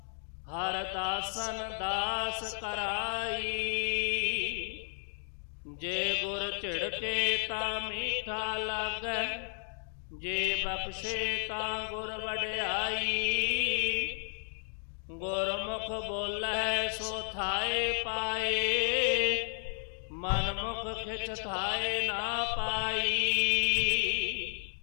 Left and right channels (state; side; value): silent; right; 56 dB below the other